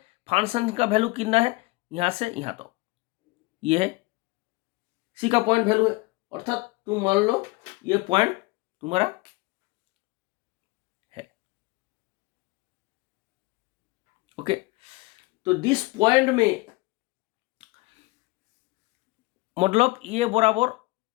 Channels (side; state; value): right; quieter; 23.5 dB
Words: फंक्शन का वैल्यू कितना है, यहाँ से यहाँ तक, ये है सी का पॉइंट वैल्यू है। अर्थात तुम मान लो ये पॉइंट तुम्हारा है, ओके। तो दिस पॉइंट में मतलब ये बराबर